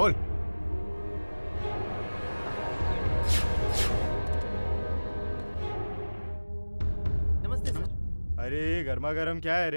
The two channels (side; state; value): both; inverted; correlation -1.00